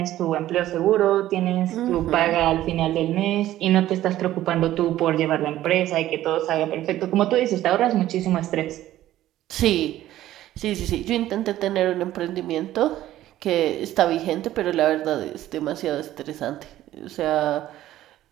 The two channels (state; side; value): quieter; left; 13.9 dB